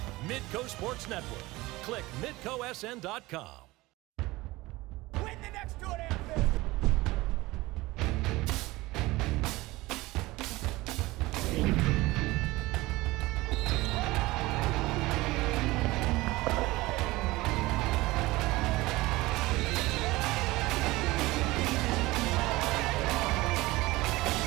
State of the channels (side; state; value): left; quieter; 20.1 dB